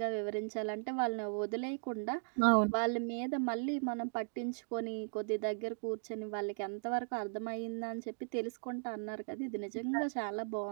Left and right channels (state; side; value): silent; left; digital silence